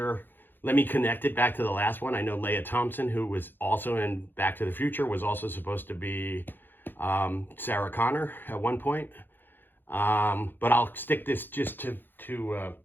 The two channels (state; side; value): late; right; 0.095 ms